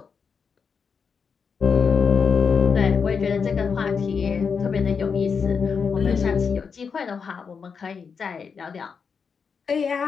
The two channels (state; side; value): quieter; right; 5.9 dB